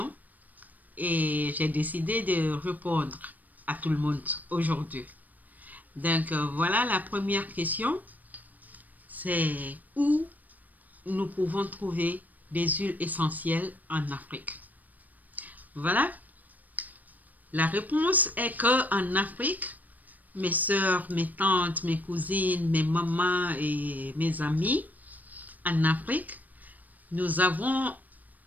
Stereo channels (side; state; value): left; late; 0.081 ms